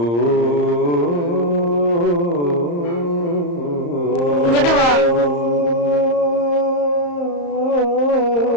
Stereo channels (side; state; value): right; late; 34 ms